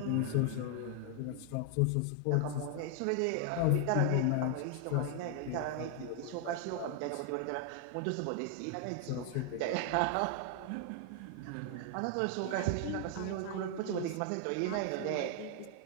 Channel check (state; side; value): different; both; correlation 0.00